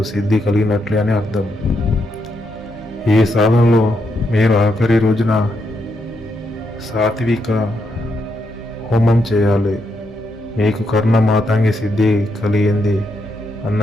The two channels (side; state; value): both; normal; correlation 0.80